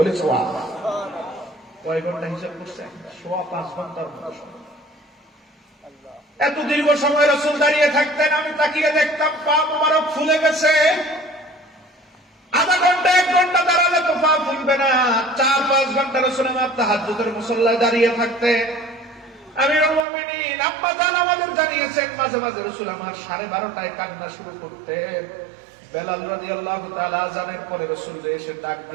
সুবহানাল্লাহ। কয় ঘন্টা হিসাব করছেন? 5.5 ঘন্টার মতো সময়। এত দীর্ঘ সময় রাসূল দাঁড়িয়ে থাকতেন। আমি তাকিয়ে দেখতাম পা মোবারক ফুলে গেছে। আধা ঘন্টা 1 ঘন্টা দাঁড়ালে তো পা ফুলবে না, 4-5 ঘন্টা রাসূল আমার তাহাজ্জুদের মুসল্লায় দাঁড়িয়ে থাকতেন। আমিরুল মুমিনিন আব্বা জান আমাদের জানিয়েছেন, মাঝে মাঝে রাসূল আমার 12:30টায় কান্না শুরু করতেন। বেলাল রাদিয়াল্লাহু তাআলা আযানের পরে রাসূল এসে ডাক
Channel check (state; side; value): drops out; left; at 20.1 s